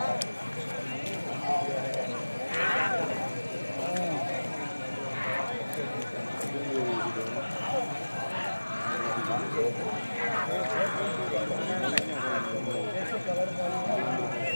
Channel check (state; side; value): inverted; both; correlation -1.00